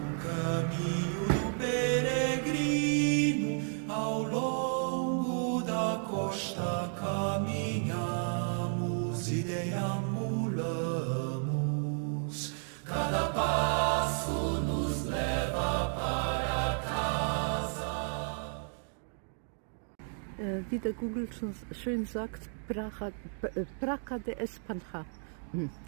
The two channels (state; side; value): silent; left; 56 dB below the other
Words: caminho do peregrino. Ao longo da costa caminhamos e deambulamos. Cada passo nos leva para casa. Wie der Google schon schön sagt, Praca de Espanha.